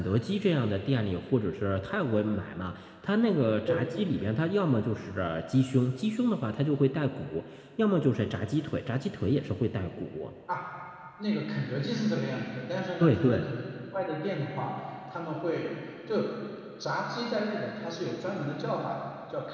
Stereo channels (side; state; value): both; identical; correlation 1.00